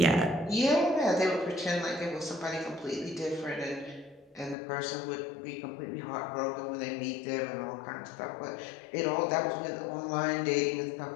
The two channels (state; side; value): drops out; right; at 4.5 s